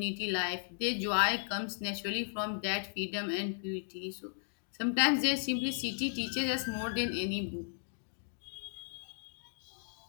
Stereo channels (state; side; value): silent; right; digital silence